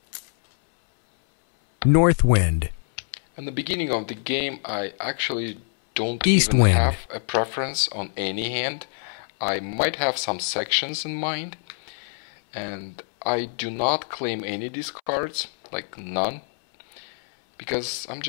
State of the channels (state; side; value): silent; right; 62 dB below the other